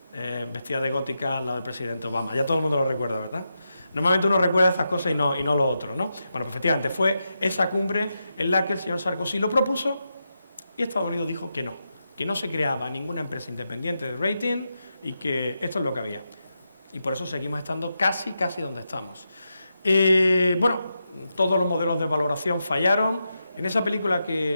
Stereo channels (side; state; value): both; inverted; correlation -0.87